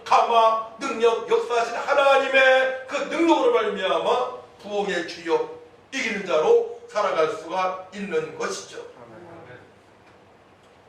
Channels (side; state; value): both; identical; correlation 1.00